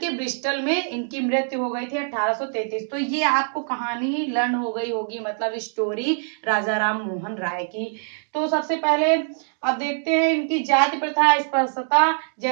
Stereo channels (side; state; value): left; silent; digital silence